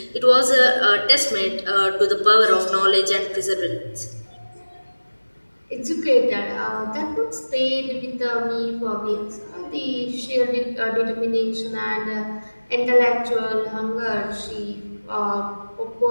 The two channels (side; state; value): both; inverted; correlation -1.00